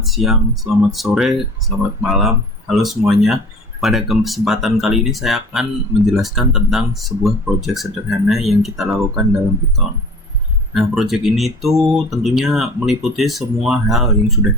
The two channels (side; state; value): both; normal; correlation 0.45